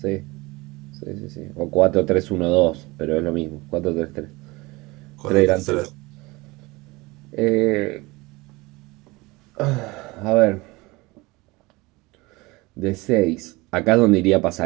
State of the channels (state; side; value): quieter; left; 22.9 dB